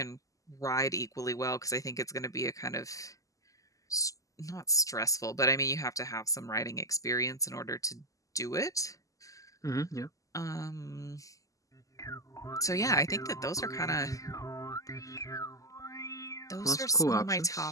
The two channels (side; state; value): right; late; 0.16 ms